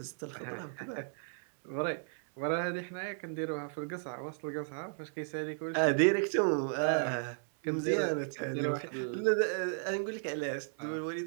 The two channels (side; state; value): left; silent; 55 dB below the other